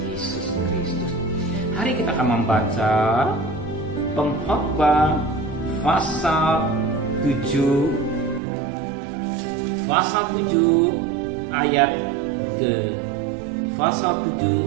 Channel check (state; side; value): drops out; left; at 8.4 s